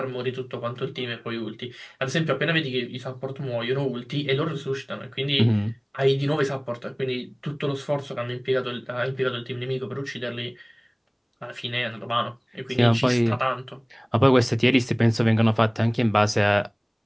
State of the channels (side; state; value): both; identical; correlation 1.00